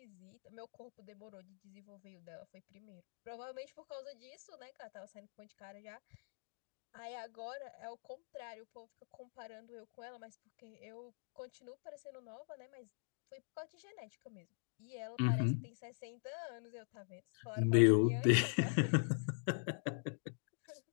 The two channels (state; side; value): silent; right; digital silence